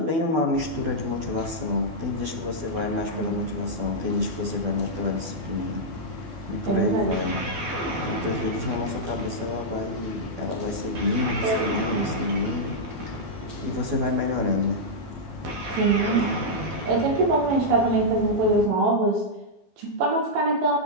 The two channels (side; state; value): left; late; 12 ms